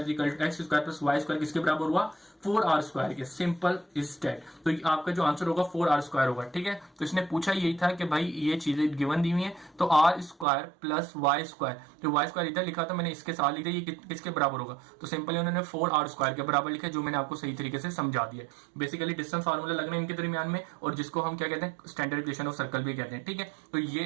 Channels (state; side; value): drops out; left; at 10.5 s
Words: plus y square किसके बराबर हुआ, 4r स्क्वायर के। Simple is that. तो आपका जो आंसर होगा 4r स्क्वायर होगा। ठीक है, तो इसने पूछा यही था कि भाई ये चीजें गिवन दी हुई है, तो r square plus y square, तो y स्क्वायर इधर लिखा था मैंने, इसके साथ लिखा, ये किसके बराबर होगा। तो सिंपली उन्होंने 4r स्क्वायर के बराबर लिखा, जो मैंने आपको सही तरीके से समझा दिया। बेसिकली डिस्टेंस फार्मूला लगना इनके दरमियान में, और जिसको हम क्या कहते हैं, स्टैंडर्ड इक्वेशन ऑफ सर्कल भी कहते हैं। ठीक है, तो